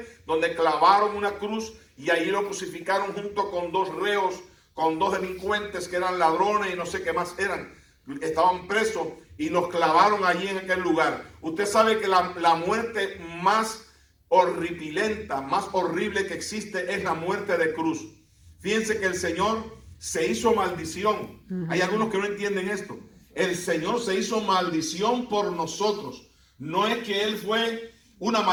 donde clavaron una cruz y allí lo crucificaron junto con dos reos, con dos delincuentes que eran ladrones y no sé qué más eran. Estaban presos y los clavaron allí en aquel lugar. Usted sabe que la muerte más horripilenta, más horrible que existe es la muerte de cruz. Fíjense que el Señor se hizo maldición. Hay algunos que no entienden esto. El Señor se hizo maldición por nosotros. No es que Él fue una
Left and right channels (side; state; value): both; identical; correlation 1.00